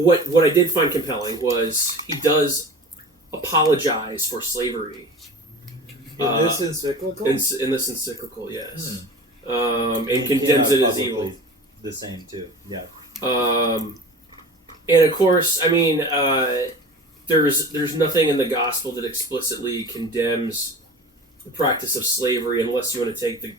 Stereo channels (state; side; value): normal; both; correlation 0.37